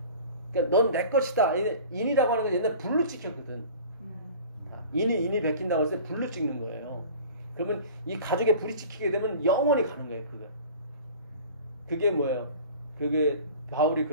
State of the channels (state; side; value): inverted; both; correlation -0.42